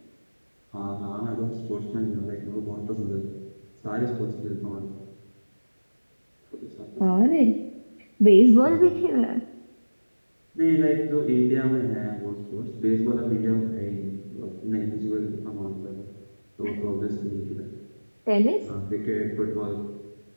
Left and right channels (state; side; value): inverted; both; correlation -1.00